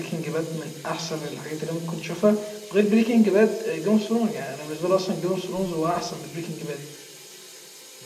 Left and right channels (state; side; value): identical; both; correlation 1.00